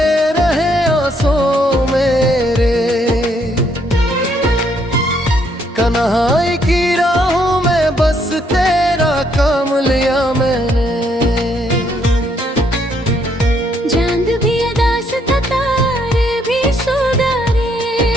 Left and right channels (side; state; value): both; normal; correlation 0.71